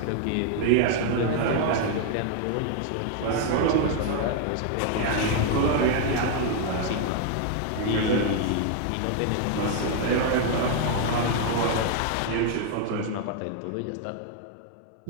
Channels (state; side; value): different; both; correlation 0.00